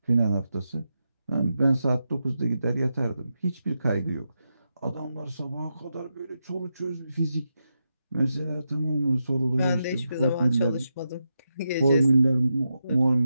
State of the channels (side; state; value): both; inverted; correlation -0.87